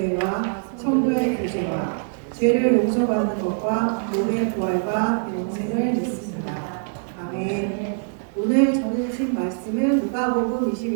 성도의 교제와 죄를 용서받는 것과 몸의 부활과 영생을 믿습니다. 아멘. 오늘 전해주신 말씀은 누가복음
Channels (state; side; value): silent; left; digital silence